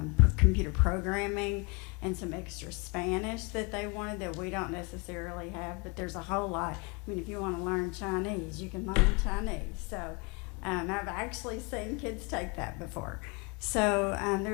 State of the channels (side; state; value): right; quieter; 29.4 dB